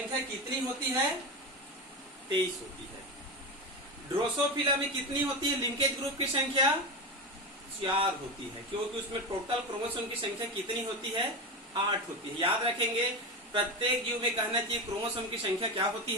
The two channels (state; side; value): normal; both; correlation 0.19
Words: कितनी होती है? 23 होती है। ड्रोसोफिला में कितनी होती है लिंकेज ग्रुप की संख्या? 4 होती है, क्योंकि उसमें टोटल क्रोमोसोम की संख्या कितनी होती है? 8 होती है। याद रखेंगे, प्रत्येक जीव में कहना चाहिए क्रोमोसोम की संख्या क्या होती